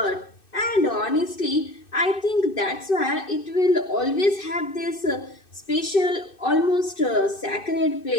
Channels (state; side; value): late; right; 2.6 ms